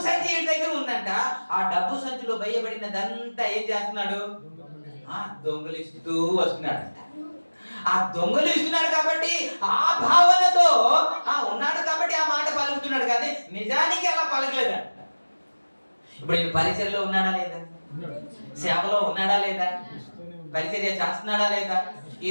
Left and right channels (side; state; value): both; inverted; correlation -1.00